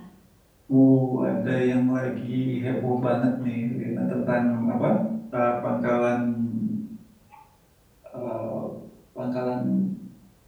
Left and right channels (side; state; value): both; identical; correlation 1.00